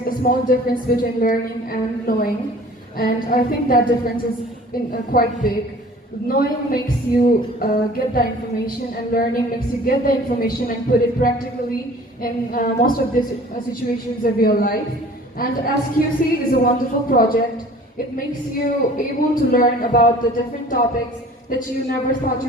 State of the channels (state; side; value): normal; both; correlation 0.47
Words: a small difference between learning and knowing, and I think that difference is quite big. Knowing makes you get the information, and learning makes you get the information and put it practically in most of the situations of your life. And SQC is a wonderful project. It makes you able to learn about the different topics that you never thought